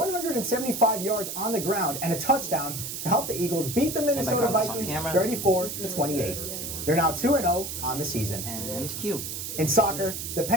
yards on the ground and a touchdown to help the Eagles beat the Minnesota Vikings 34-28. They're now 2-0 on the season. And Q. In soccer, the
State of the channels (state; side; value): noise; right; hiss, 6 dB below the sound